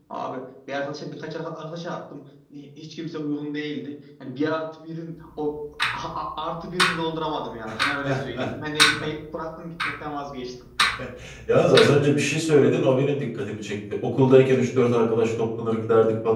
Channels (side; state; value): both; identical; correlation 1.00